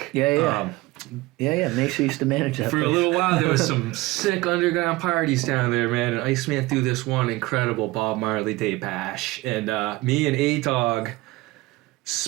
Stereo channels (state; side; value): quieter; left; 20.1 dB